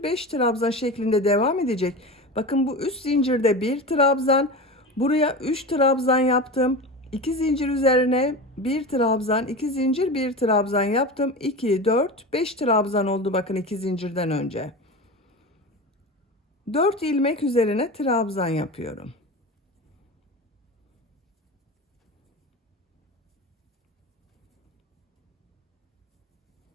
5 trabzan şeklinde devam edecek. Bakın bu üst zincirde bir trabzan, buraya 3 trabzan yaptım. 2 zincir üzerine bir trabzan, 2 zincir, bir trabzan yaptım. 2, 4, 5 trabzan oldu bakın 2 zincirden önce. 4 ilmek üzerine trabzan yapıyorum.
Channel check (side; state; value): both; normal; correlation 0.27